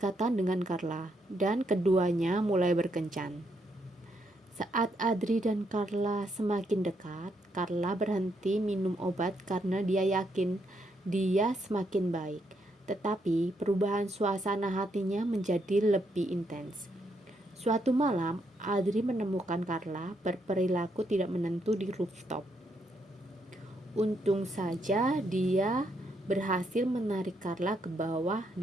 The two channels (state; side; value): normal; both; correlation 0.76